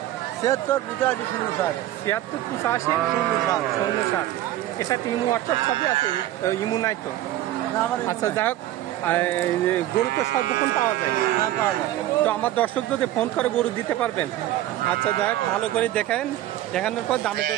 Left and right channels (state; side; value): quieter; left; 14.0 dB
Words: 768507 768507। এর সাথে ইমো হোয়াটসঅ্যাপ সবই আছে? ইমো নাই তো? আচ্ছা, যাই হোক, গরু তো সর্বক্ষণ পাওয়া যায়। তো আমার দর্শক যদি ফোন করে গরু দিতে পারবেন? আচ্ছা, যাই হোক, ভালো করে দেখানোর পর দামে